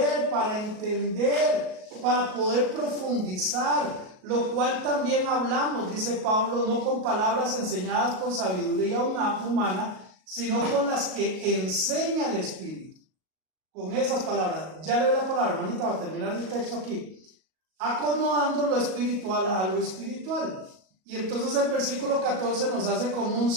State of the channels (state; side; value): late; left; 38 ms